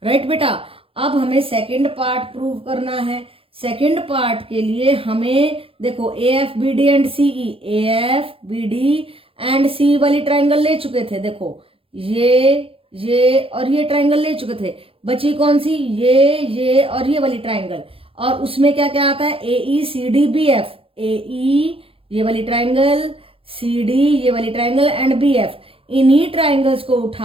right बेटा। अब हमें second part prove करना है। सेकंड पार्ट के लिए हमें देखो A F B D and C E, A F B D and C वाली ट्राइंगल ले चुके थे। देखो ये और ये ट्राइंगल ले चुके थे। बची कौन सी? ये और ये वाली ट्राइंगल। और उसमें क्या क्या आता है? ए ई सी डी बी एफ, ए ई ये वाली ट्राइंगल, सी डी ये वाली ट्राइंगल एंड बी एफ। इन्हीं ट्राइंगल्स को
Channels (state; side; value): late; left; 0.27 ms